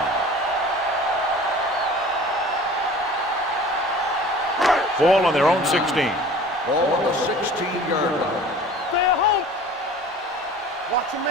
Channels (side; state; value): both; normal; correlation 0.44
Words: 1. Ball on their own 16. Ball on the 16-yard line.